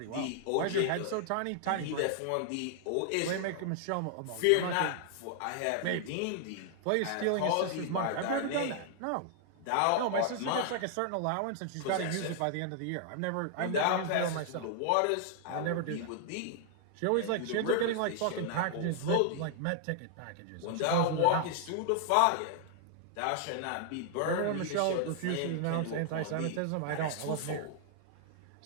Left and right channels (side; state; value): both; different; correlation -0.01